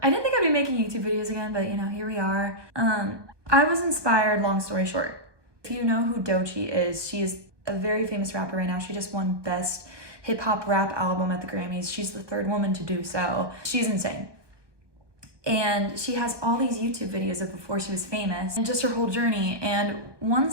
I didn't think I'd be making YouTube videos again, but you know, here we are. I was inspired, long story short. If you know who Doechii is, she is a very famous rapper right now. She just won Best Hip Hop Rap Album at the Grammys. She's the third woman to do so. She's insane. And she has all these YouTube videos of before she was famous and just her whole journey. And one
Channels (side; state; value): left; late; 1.2 ms